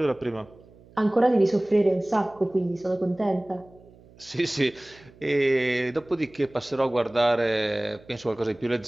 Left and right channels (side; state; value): right; noise; hum, 25 dB below the sound